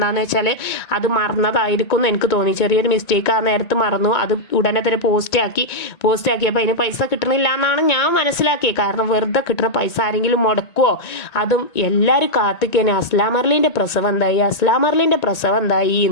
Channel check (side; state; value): right; late; 1.9 ms